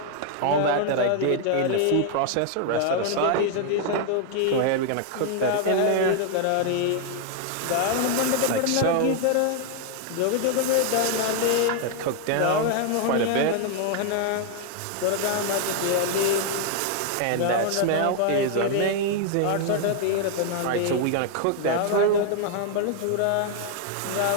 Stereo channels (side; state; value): both; different; correlation 0.00